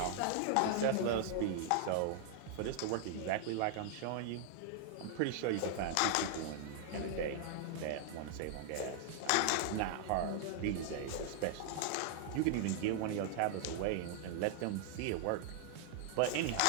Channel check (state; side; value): different; both; correlation 0.00